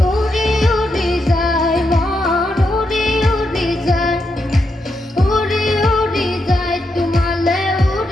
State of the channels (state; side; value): normal; both; correlation 0.83